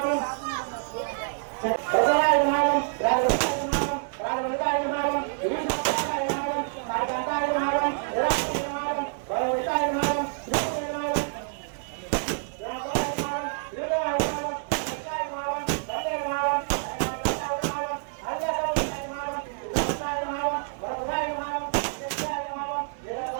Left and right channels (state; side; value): silent; left; 57 dB below the other